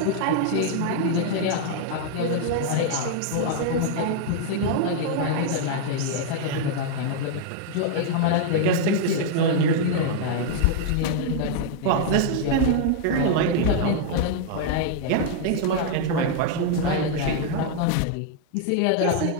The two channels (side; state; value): both; different; correlation -0.01